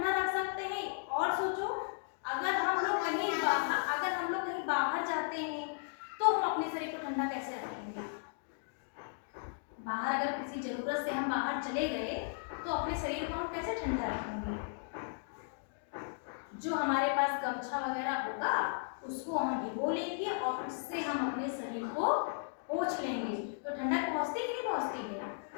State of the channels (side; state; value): right; silent; digital silence